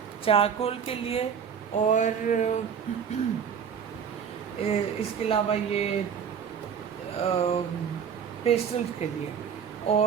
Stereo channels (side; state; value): left; quieter; 7.4 dB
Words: चारकोल के लिए, और इसके अलावा ये पेस्टल्स के लिए,